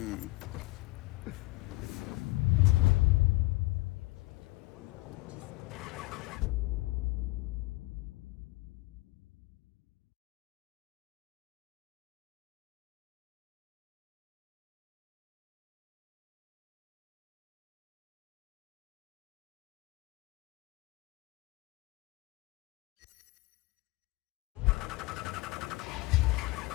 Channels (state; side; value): quieter; right; 21.6 dB